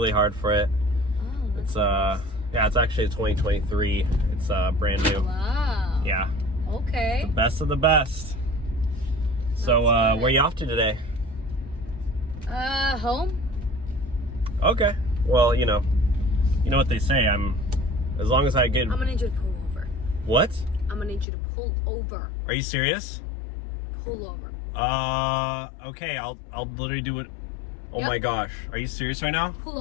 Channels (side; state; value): right; drops out; at 21.2 s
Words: hard for it. Oh, that's Yeah, it's actually a 2023. It's brand new. Wow. Yeah. Okay. Best of the best. So, That's good. where you off to today? Home? Okay. Well, you know what they say. As long as I get. I'm gonna need you to pull over. What? I'm gonna need you to pull over. Are you serious? Pull over. Okay. I'll literally do it. Oh Yep. my gosh. Are you serious right now? Pull